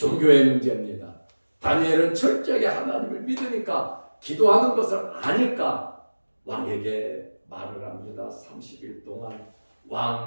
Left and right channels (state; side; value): inverted; both; correlation -1.00